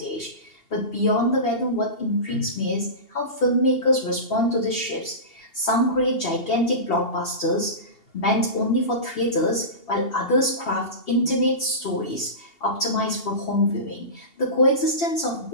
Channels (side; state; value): right; late; 2.8 ms